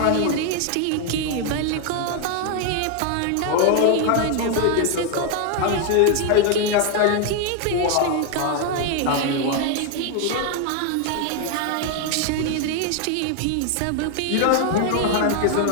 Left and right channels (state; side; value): different; both; correlation 0.01